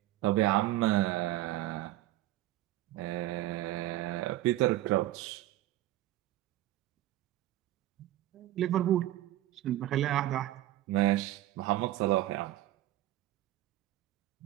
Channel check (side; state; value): left; quieter; 15.0 dB